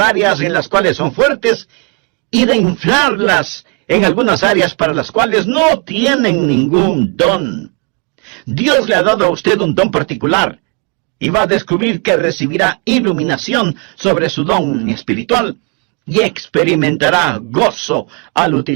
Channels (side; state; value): left; quieter; 31.7 dB